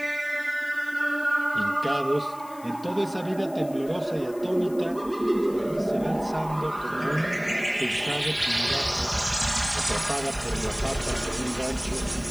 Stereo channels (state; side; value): noise; left; hiss, 22 dB below the sound